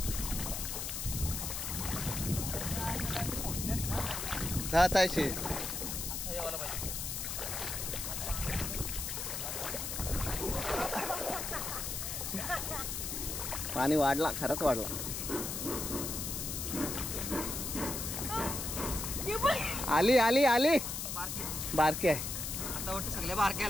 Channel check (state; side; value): noise; left; hiss, 4 dB below the sound